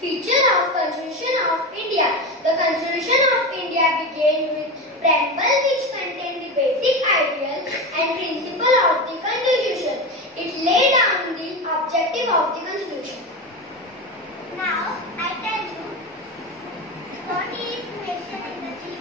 Feature of Constitution of India. The Constitution of India began with preamble which contained the basic ideal and principle of the Constitution. It laid down the objective of the Constitution. Now I tell you what is mentioned in the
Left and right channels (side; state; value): both; normal; correlation 0.21